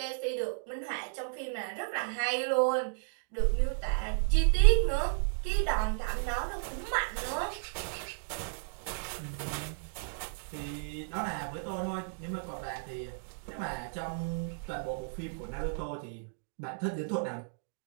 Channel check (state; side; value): silent; left; digital silence